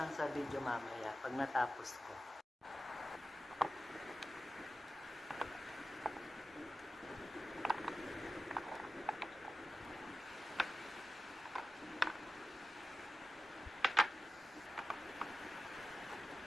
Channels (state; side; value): normal; both; correlation 0.93